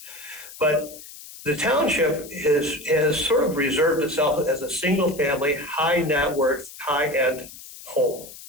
But the township has sort of reserved itself as a single family, high net worth, high end home.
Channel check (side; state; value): left; noise; hiss, 16 dB below the sound